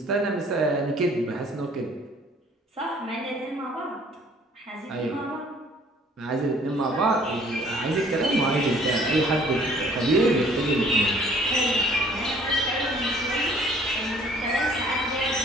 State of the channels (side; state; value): both; normal; correlation 0.56